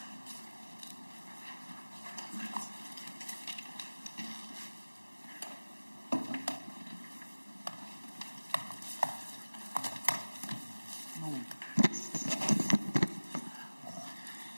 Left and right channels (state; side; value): inverted; both; correlation -1.00